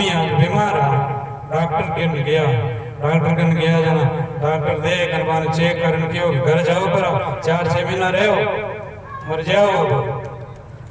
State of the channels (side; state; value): both; identical; correlation 1.00